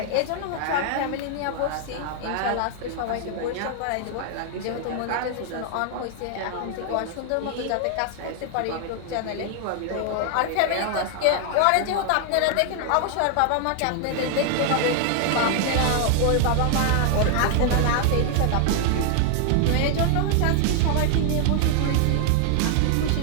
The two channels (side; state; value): both; different; correlation 0.00